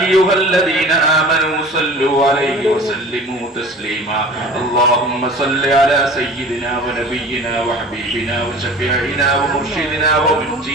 الذين آمنوا صلوا عليه وسلموا تسليما. اللهم صل على سيدنا ونبينا وحبيبنا وشفيعنا ومرشدنا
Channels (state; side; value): normal; both; correlation 0.41